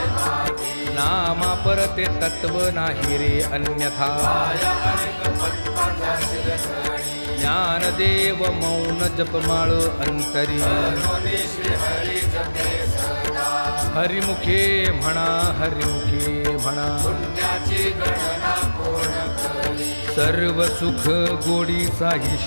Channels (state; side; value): inverted; both; correlation -1.00